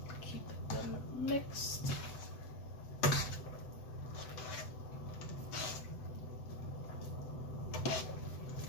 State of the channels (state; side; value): late; right; 7.9 ms